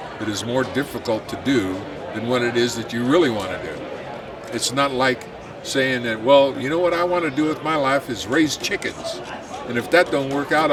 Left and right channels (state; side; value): identical; both; correlation 1.00